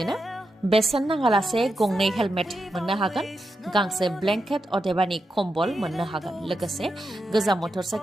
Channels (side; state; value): both; normal; correlation 0.87